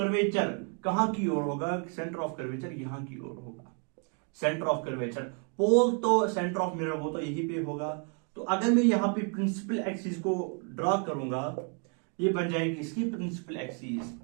कहां की ओर होगा? सेंटर ऑफ कर्वेचर यहां की ओर होगा। सेंटर ऑफ कर्वेचर पोल तो सेंटर ऑफ मिरर वो तो यहीं पे होगा। तो अगर मैं यहां पे प्रिंसिपल एक्सिस को ड्रॉ करूंगा, ये बन जाएगी इसकी प्रिंसिपल एक्सिस।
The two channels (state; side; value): quieter; left; 38.5 dB